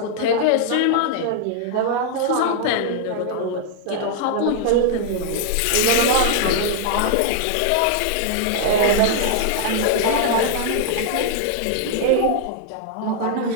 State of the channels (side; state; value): both; different; correlation -0.01